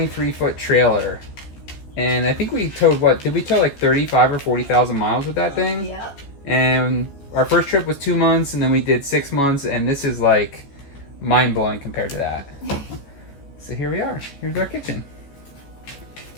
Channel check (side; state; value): right; late; 14 ms